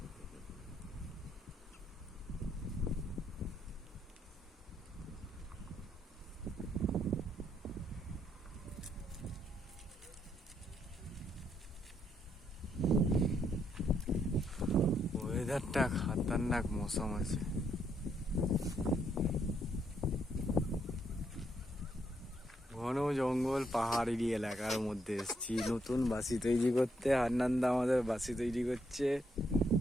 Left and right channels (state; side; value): normal; both; correlation 0.75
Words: ওয়েদারটা খাতারনাক মৌসুম আছে। ঘন জঙ্গল পাহাড়ি এলাকার মধ্যে এসেছি নতুন বাসি তৈরি করতে। হান্নানদা আমাদের বাসি তৈরি করছে।